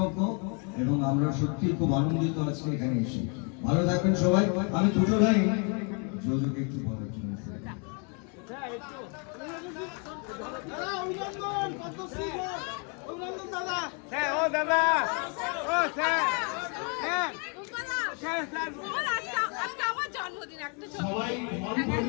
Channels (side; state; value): right; quieter; 36.9 dB